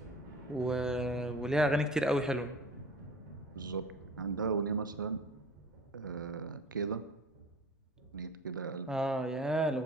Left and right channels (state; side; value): normal; both; correlation 0.42